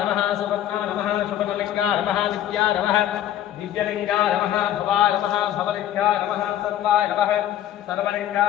नमः सुवर्णा नमः शुभलिंगाय नमः नित्याय नमः दिव्यलिंगाय नमः भवाय नमः भवलिंगाय नमः सर्वाय नमः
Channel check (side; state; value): right; quieter; 11.8 dB